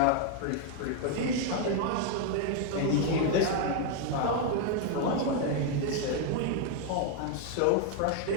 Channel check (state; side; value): different; both; correlation 0.00